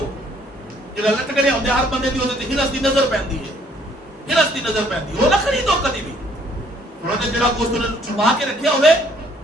جڑا لٹک رہا ہوندا ہر بندے دی تے ہرس دی نظر پیندی ہے, ہرس دی نظر پیندی وہ نہ خریدو کدی بھی. انہوں نے جڑا گوشت نے چھپا کے رکھیا ہوئے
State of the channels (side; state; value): both; normal; correlation 0.63